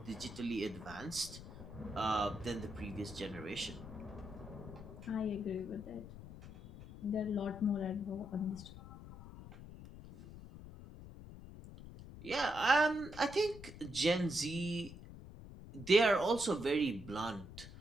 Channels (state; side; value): noise; left; rumble, 14 dB below the sound